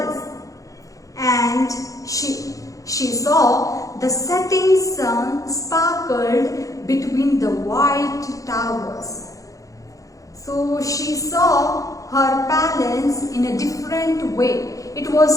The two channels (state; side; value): late; right; 0.16 ms